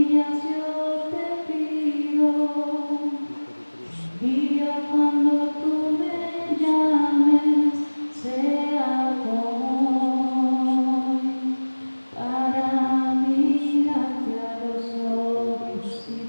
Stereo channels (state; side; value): inverted; both; correlation -1.00